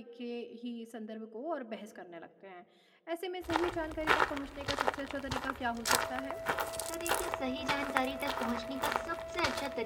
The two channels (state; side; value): identical; both; correlation 1.00